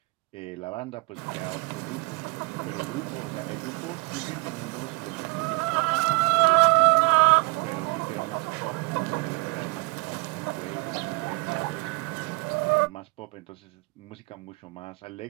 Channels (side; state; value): left; quieter; 28.1 dB